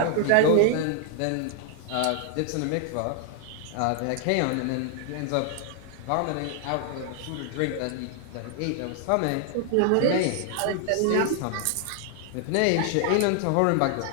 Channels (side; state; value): both; different; correlation 0.00